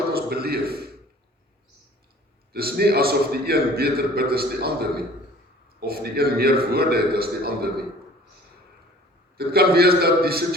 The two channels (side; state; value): both; normal; correlation 0.49